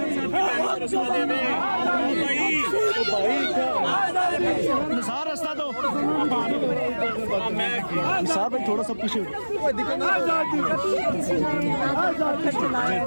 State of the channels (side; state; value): both; inverted; correlation -1.00